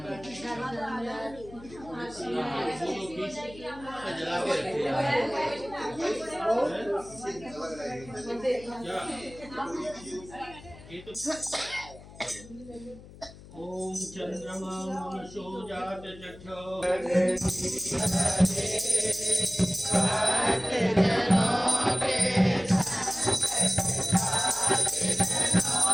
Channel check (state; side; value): noise; left; hum, 19 dB below the sound